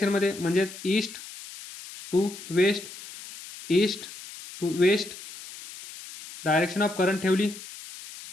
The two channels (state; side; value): noise; left; hiss, 15 dB below the sound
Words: म्हणजे east to west, direction of current ठेवली